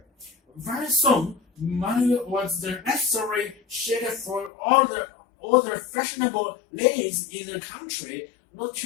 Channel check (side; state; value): right; drops out; at 4.5 s